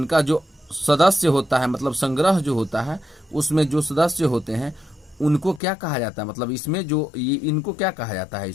जो सदस्य होता है, मतलब संग्रह जो होता है, उसमें जो सदस्य होते हैं उनको क्या कहा जाता है? मतलब इसमें जो इनको क्या कहा जाता है?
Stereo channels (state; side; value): drops out; right; at 5.6 s